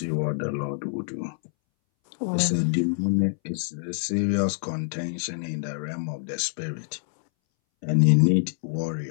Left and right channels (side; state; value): right; silent; 61 dB below the other